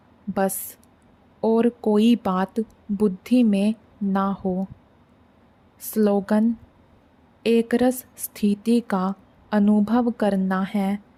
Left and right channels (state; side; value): identical; both; correlation 1.00